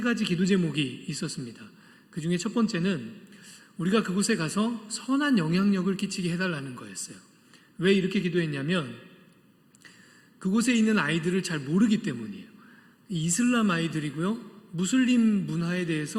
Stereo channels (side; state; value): both; identical; correlation 1.00